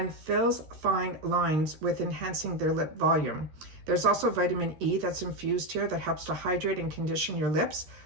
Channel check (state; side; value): late; left; 13 ms